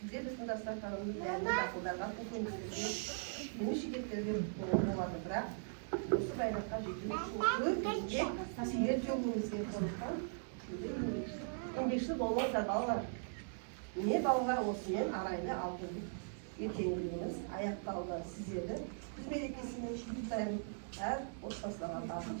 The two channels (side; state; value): left; silent; digital silence